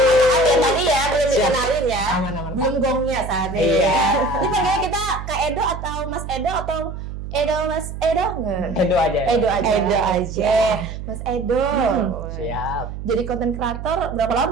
Tadi ya, belum dikenalin ya. Belum gongnya saat ini ya. Ini panggilnya kita Kak Edo atau Mas Edo atau Edo Mas Edo nggak? Edo aja. Edo aja. Edo aja. Mas Edo. Siap. Jadi konten kreator berapa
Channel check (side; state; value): right; noise; hum, 8 dB below the sound